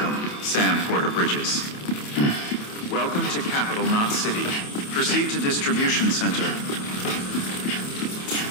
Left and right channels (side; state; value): right; late; 28 ms